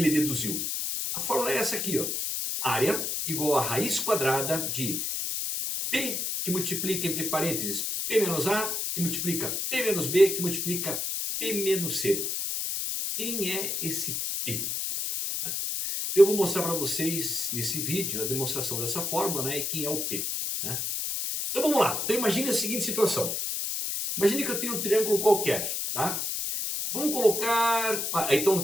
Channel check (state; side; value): noise; left; hiss, 1 dB below the sound